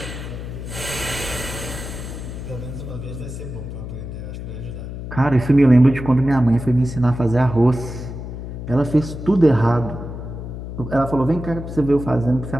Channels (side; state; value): left; noise; hum, 8 dB below the sound